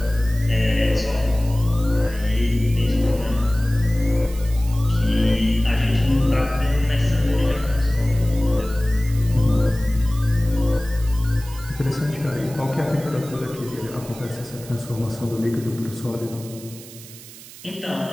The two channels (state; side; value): noise; right; hiss, 17 dB below the sound